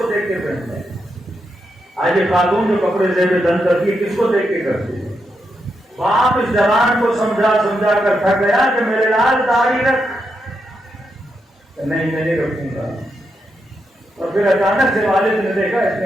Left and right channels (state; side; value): normal; both; correlation 0.83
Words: دیکھ کے پہنتا ہے؟ آج یہ خاتون جو کپڑے زیب دن کرتی ہے کس کو دیکھ کے کرتی ہے؟ باپ اس جوان کو سمجھا کر تھک گیا کہ میرے لال داڑھی رکھ، نہیں میں نہیں رکھوں گا. اور پھر اچانک سے والد نے دیکھا اس نے